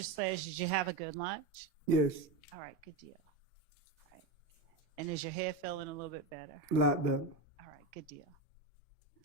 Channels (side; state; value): left; quieter; 3.5 dB